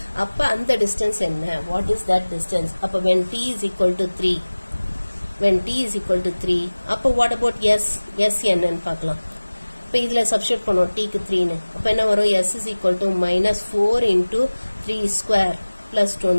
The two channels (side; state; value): both; inverted; correlation -1.00